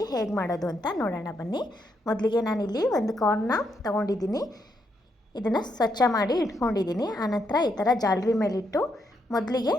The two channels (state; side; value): normal; both; correlation 0.78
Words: ಹೇಗೆ ಮಾಡೋದು ಅಂತ ನೋಡೋಣ ಬನ್ನಿ. ಮೊದಲಿಗೆ ನಾನಿಲ್ಲಿ ಒಂದು ಕಾರ್ನ್ನ ತೊಗೊಂಡಿದ್ದೀನಿ. ಇದನ್ನು ಸ್ವಚ್ಛ ಮಾಡಿ ಇಟ್ಕೊಂಡಿದ್ದೀನಿ. ಆನಂತರ ಈ ಥರ ಜಾಲರಿ ಮೇಲಿಟ್ಟು ಮೊದಲಿಗೆ